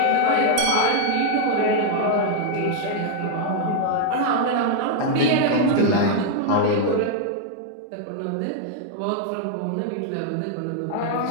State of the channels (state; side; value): different; both; correlation 0.00